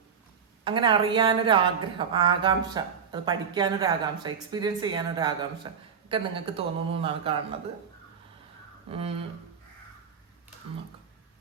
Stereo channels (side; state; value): left; quieter; 6.8 dB